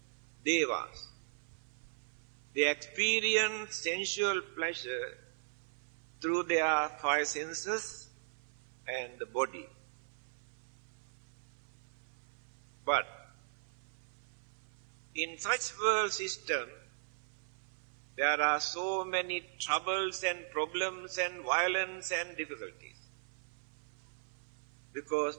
devas. They experience sensual pleasure through their five senses and the body. But in such world system, there are so many troubles and problems and violence and difficulties. Because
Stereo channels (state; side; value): silent; left; 52 dB below the other